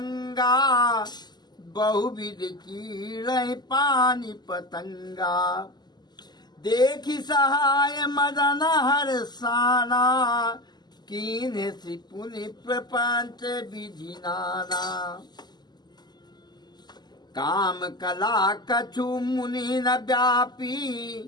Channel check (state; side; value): late; right; 0.21 ms